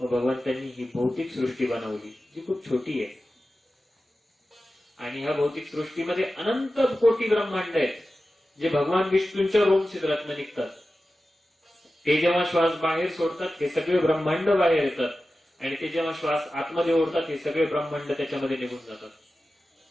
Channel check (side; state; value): both; normal; correlation 0.94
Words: ही भौतिक सृष्टी बनवली जी खूप छोटी आहे. आणि ह्या भौतिक सृष्टीमध्ये अनंत कोटी ब्रह्मांड आहेत जे भगवान विष्णूंच्या रोम छिद्रातनं निघतात. ते जेव्हा श्वास बाहेर सोडतात हे सगळे ब्रह्मांड बाहेर येतात, आणि ते जेव्हा श्वास आतमध्ये ओढतात हे सगळे ब्रह्मांड त्याच्यामध्ये निघून जातात.